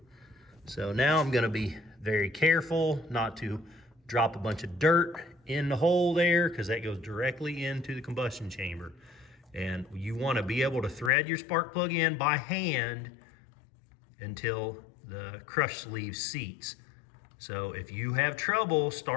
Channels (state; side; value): drops out; right; at 11.1 s